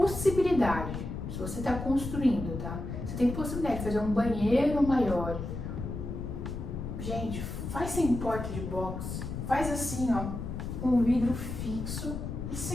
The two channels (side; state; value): left; noise; rumble, 6 dB below the sound